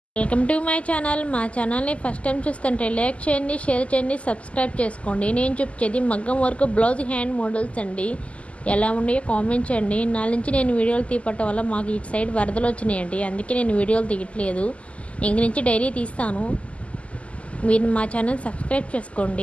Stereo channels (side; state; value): right; late; 0.062 ms